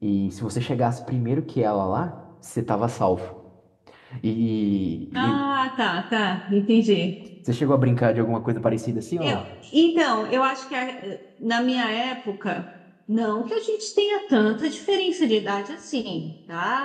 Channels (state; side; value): identical; both; correlation 1.00